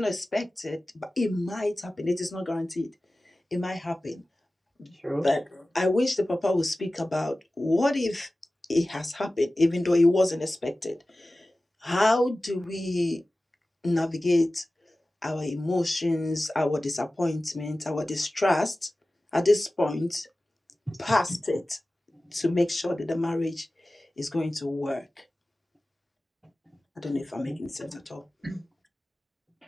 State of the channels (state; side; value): normal; both; correlation 0.96